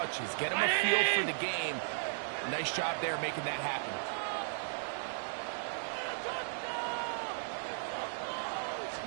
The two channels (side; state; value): left; silent; digital silence